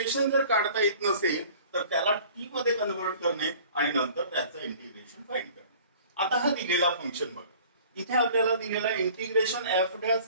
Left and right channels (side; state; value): both; inverted; correlation -0.48